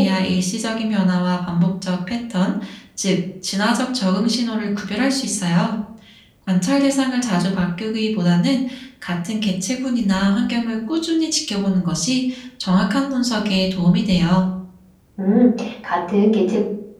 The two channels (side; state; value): both; identical; correlation 1.00